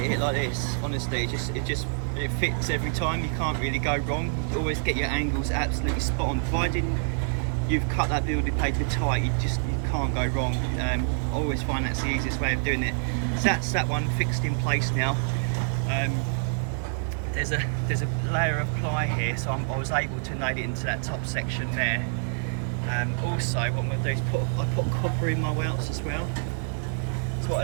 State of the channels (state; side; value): silent; left; digital silence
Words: it like this, honestly, it fits every time. You can't really go wrong. You always get your angles absolutely spot on. Provided you've cut that building paper tight, you can't go wrong. I always find that's the easiest way of doing it. So that's that one fixed in place now. There's a layer of ply here, so I was able to nail it into that top section there. Also, what I'm going to do is I put copper in my welts as well. So